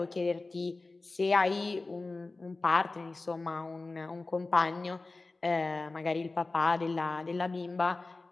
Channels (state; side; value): quieter; right; 3.4 dB